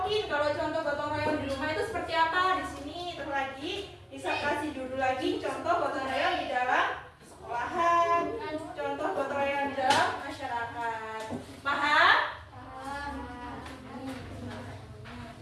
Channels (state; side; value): identical; both; correlation 1.00